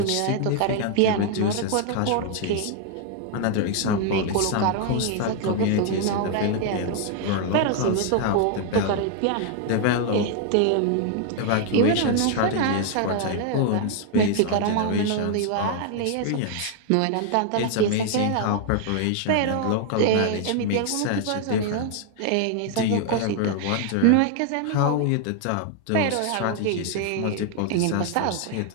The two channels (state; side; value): different; both; correlation 0.00